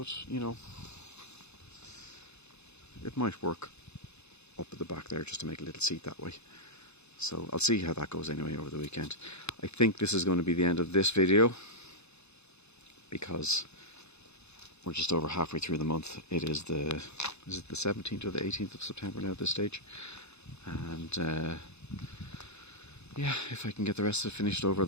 you know, it might work up at the back there just to make a little seat that way. So I'll see how that goes anyway over the weekend. I think this is going to be the end of this video, because we're just over halfway through the month. It is the 17th or the 18th of September now at this stage. And yeah, if I can get the rest of it finished over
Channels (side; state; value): right; late; 0.81 ms